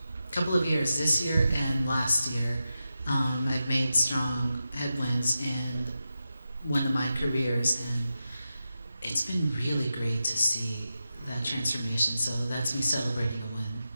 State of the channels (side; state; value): both; inverted; correlation -0.90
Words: years, this year and last year. I've made strong headwinds in one of my careers, and it's been really great to see that transformation. So that's me celebrating a win.